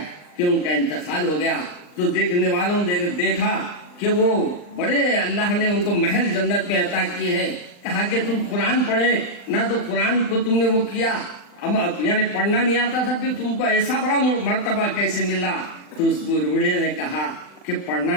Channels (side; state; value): right; late; 39 ms